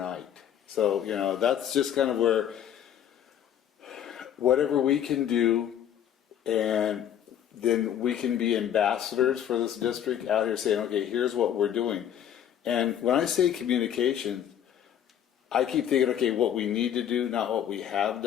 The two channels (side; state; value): right; quieter; 9.9 dB